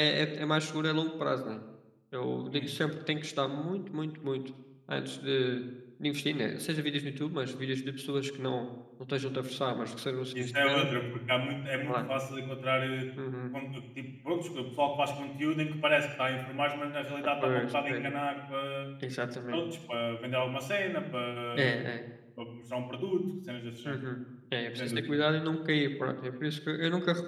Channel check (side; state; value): both; identical; correlation 1.00